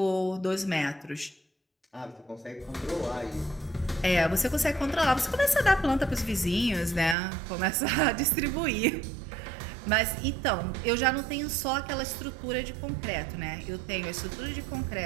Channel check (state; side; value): drops out; left; at 7.2 s